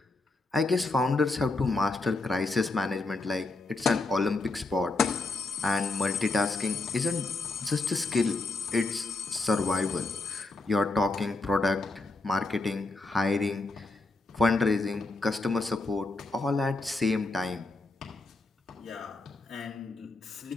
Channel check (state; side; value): quieter; right; 3.3 dB